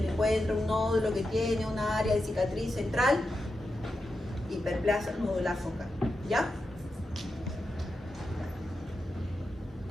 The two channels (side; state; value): both; normal; correlation 0.88